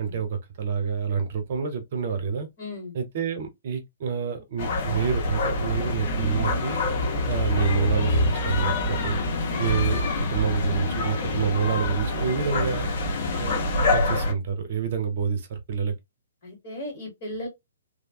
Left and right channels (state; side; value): inverted; both; correlation -0.56